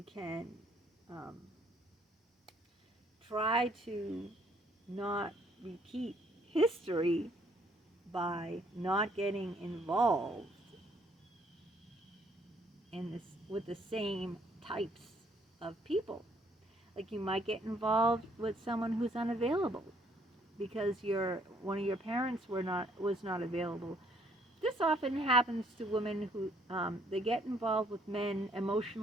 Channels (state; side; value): normal; both; correlation 0.66